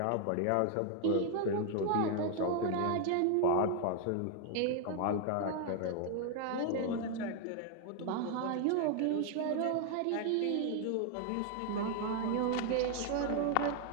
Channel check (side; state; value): both; different; correlation 0.00